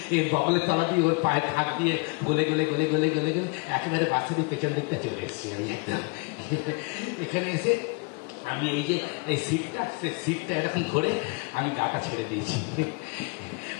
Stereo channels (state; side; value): quieter; right; 31.1 dB